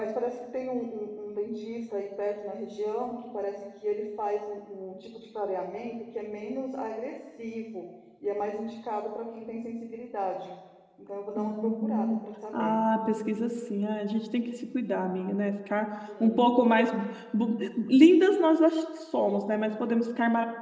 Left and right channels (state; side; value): identical; both; correlation 1.00